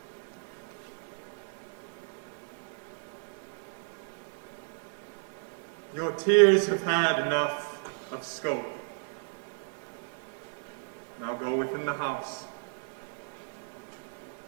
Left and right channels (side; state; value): left; silent; 56 dB below the other